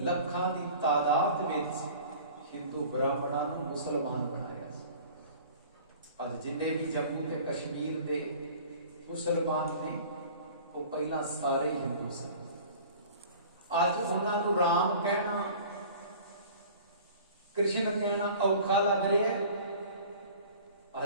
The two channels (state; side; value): inverted; both; correlation -0.44